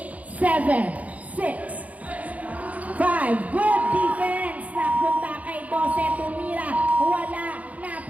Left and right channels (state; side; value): late; left; 0.071 ms